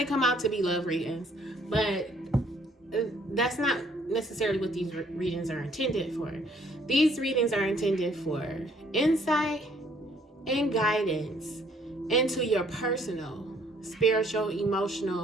come out to be love readings, but that's not necessarily what these readings are intended for. These readings are intended for insight and guidance into your personal, spiritual,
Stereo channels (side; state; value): both; normal; correlation 0.63